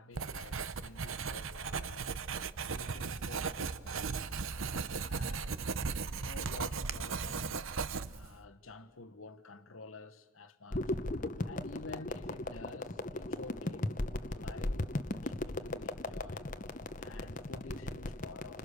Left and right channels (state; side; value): normal; both; correlation 0.42